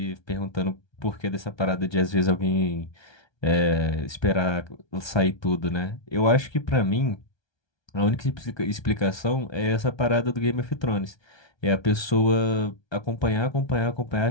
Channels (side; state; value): right; late; 1.3 ms